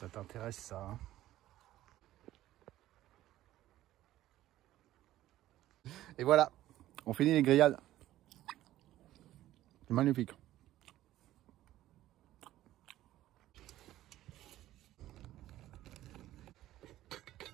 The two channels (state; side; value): quieter; left; 14.4 dB